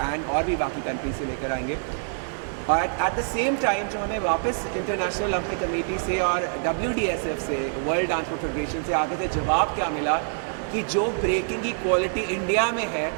और भी बाकी कंट्री से लेकर आएंगे। और एट द सेम टाइम जो हमें वापस इंटरनेशनल ओलंपिक कमेटी से और WDSF से, वर्ल्ड ट्रांसपोर्ट फेडरेशन से आगे से जवाब क्या मिला कि जो ब्रेकिंग की क्वालिटी इंडिया में है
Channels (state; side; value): silent; left; 58 dB below the other